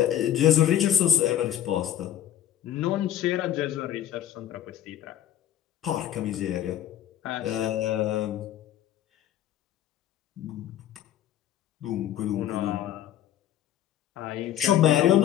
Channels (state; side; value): quieter; right; 11.4 dB